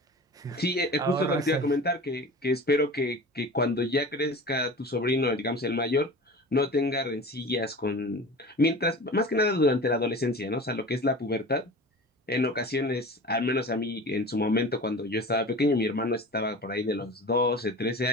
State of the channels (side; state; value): both; normal; correlation 0.36